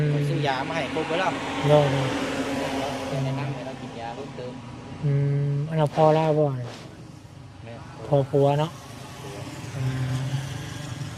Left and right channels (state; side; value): identical; both; correlation 1.00